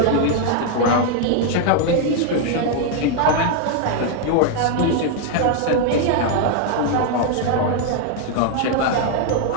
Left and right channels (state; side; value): different; both; correlation 0.00